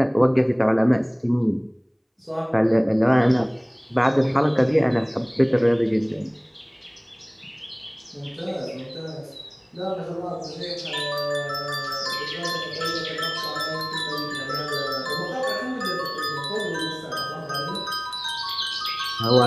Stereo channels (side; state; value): both; identical; correlation 1.00